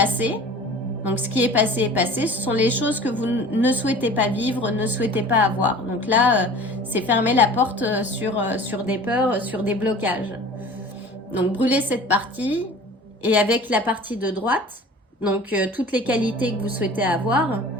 Donc ce qui est passé est passé, ce sont les choses que vous ne souhaitez pas vivre, ne souhaitez pas avoir. Donc là, c'est fermer la porte sur des peurs, sur des blocages. Donc brûlez cette partie et avec la partie de droite, donc toutes les qualités que vous souhaitez avoir,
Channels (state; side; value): normal; both; correlation 0.43